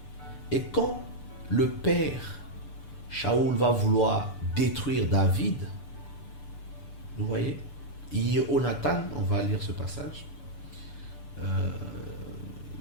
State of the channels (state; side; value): late; right; 6.8 ms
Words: Et quand le père Shaoul va vouloir détruire David, vous voyez, Jonathan, on va lire ce passage,